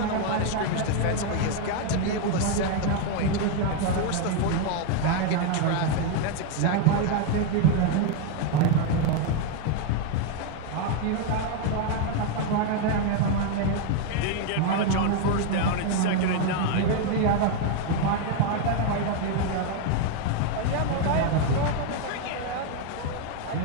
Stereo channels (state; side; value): different; both; correlation 0.01